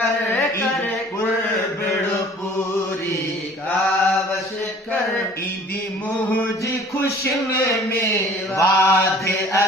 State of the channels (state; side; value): normal; both; correlation 0.50